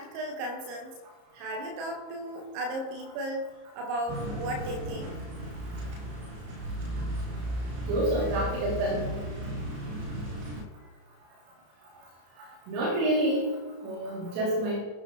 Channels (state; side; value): late; left; 34 ms